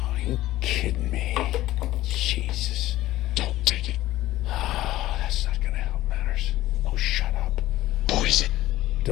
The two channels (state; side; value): quieter; right; 15.6 dB